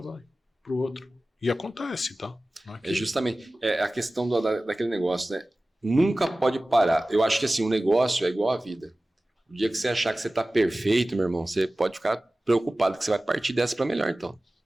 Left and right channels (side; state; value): both; normal; correlation 0.97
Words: pro outro. E acontece, tá? É justamente a questão daquele negócio, né? Nunca pode parar. Eu acho que assim, o negócio é igual à vida. O dia que você achar que você está perfeito, meu irmão, você pode ficar preocupado que você vai partir dessa para melhor, então.